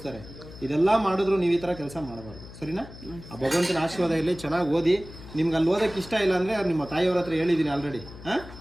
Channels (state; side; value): noise; left; hum, 16 dB below the sound